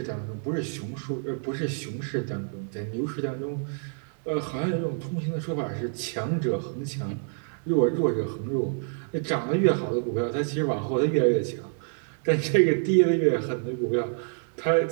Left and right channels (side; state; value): left; silent; digital silence